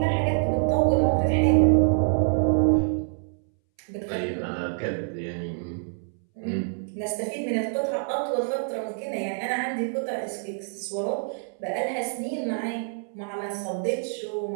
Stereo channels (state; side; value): silent; left; 61 dB below the other